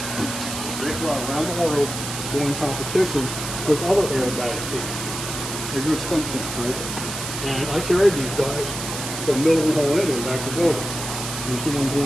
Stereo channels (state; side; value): noise; right; hiss, 6 dB below the sound